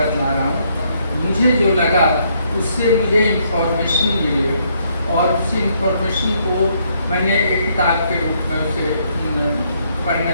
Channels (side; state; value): both; inverted; correlation -0.72